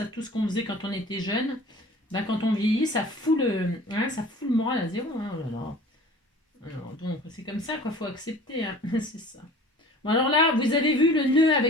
tout ce qu'on faisait quand on était jeune, ben, quand on vieillit, ça fout le moral à zéro. Hein. Oh là là. Alors, donc, c'est comme ça qu'il faut accepter. Hein. C'est ça. Bon, alors là, vous avez vu le nœud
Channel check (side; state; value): both; normal; correlation 0.44